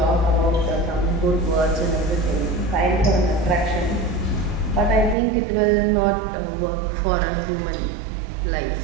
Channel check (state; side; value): drops out; left; at 5.2 s